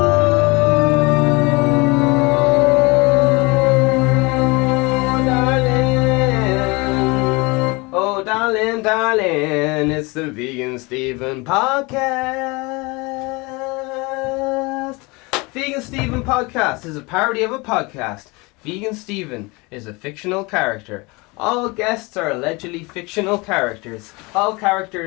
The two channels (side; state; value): right; quieter; 25.9 dB